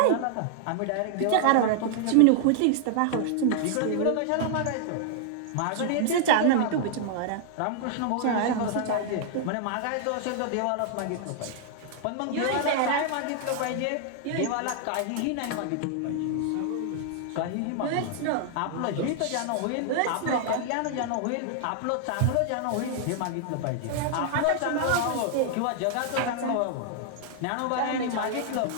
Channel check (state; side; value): different; both; correlation 0.00